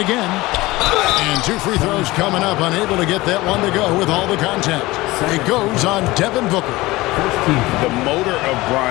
again. And 2 free throws coming up, unable to get that one to go with all the contact. It goes on Devin Booker. The motor of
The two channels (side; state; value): right; quieter; 20.0 dB